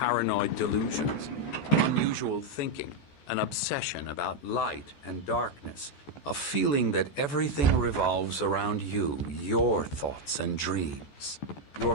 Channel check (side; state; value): right; late; 14 ms